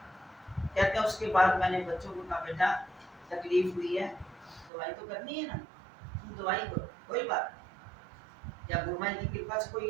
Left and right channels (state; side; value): drops out; left; at 4.7 s